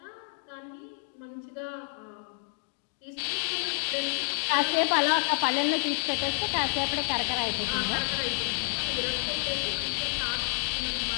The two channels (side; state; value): right; silent; digital silence